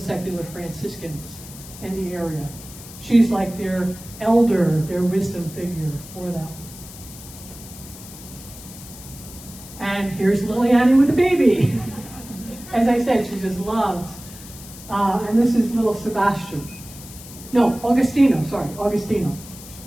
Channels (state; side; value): noise; left; hiss, 16 dB below the sound